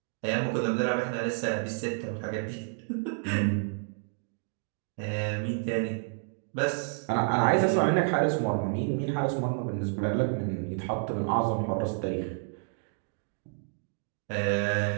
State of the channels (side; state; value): left; silent; 58 dB below the other